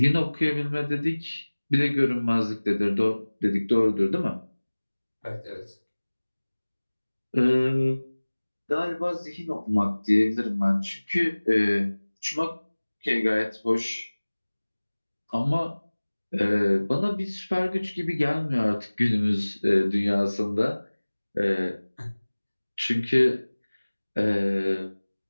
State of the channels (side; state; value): both; inverted; correlation -1.00